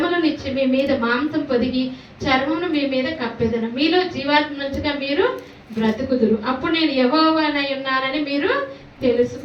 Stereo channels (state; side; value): identical; both; correlation 1.00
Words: మీ మీద మాంసం పొదిగి చర్మమును మీ మీద కప్పేదను. మీలో జీవాత్మ నుంచిగా మీరు బ్రతుకుదురు. అప్పుడు నేను యెహోవానై ఉన్నానని మీరు